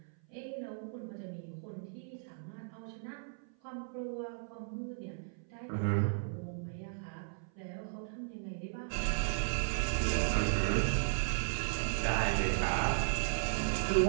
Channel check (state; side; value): silent; left; 54 dB below the other